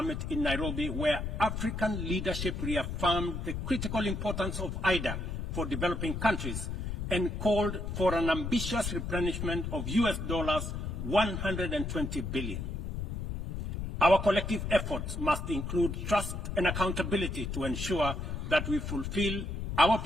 in Nairobi, where African leadership reaffirmed the critical importance of IDA for developing countries and called for an ambitious replenishment of US dollars 120 billion. Our collective efforts must include trust and accountability to ensure that we fulfill our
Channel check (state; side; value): noise; left; rumble, 4 dB below the sound